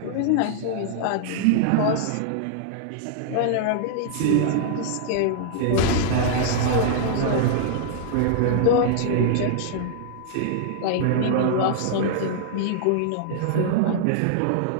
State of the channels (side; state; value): both; different; correlation -0.01